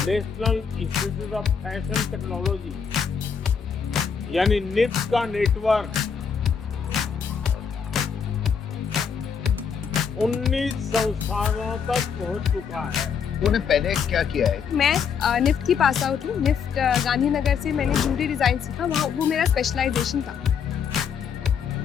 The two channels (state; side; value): quieter; right; 6.6 dB